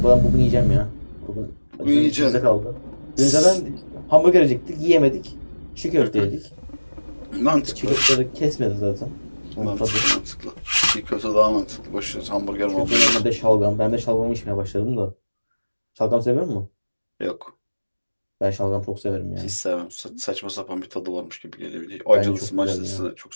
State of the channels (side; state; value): both; inverted; correlation -1.00